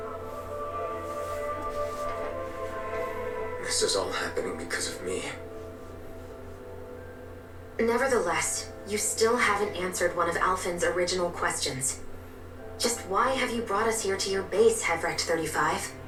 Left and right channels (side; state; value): both; identical; correlation 1.00